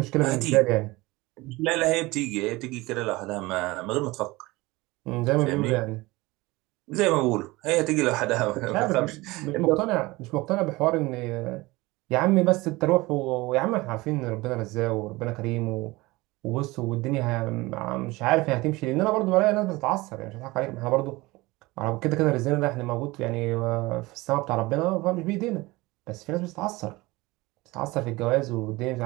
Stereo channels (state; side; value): quieter; left; 21.4 dB